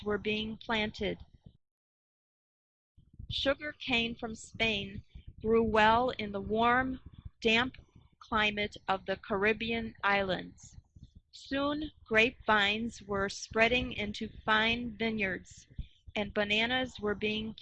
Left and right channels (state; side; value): identical; both; correlation 1.00